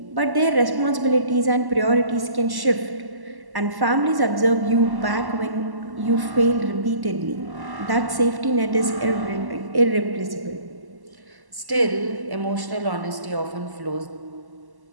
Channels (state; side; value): late; left; 1.1 ms